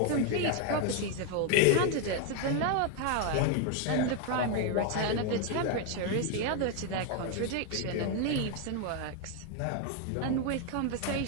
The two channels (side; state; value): both; different; correlation 0.01